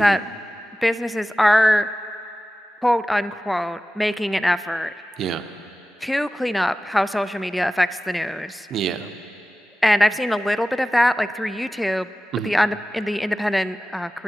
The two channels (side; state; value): both; normal; correlation 0.95